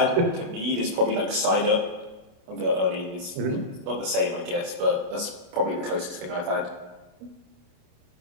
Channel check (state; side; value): late; left; 28 ms